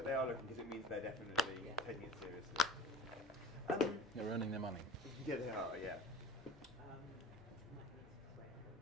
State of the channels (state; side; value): normal; both; correlation 0.37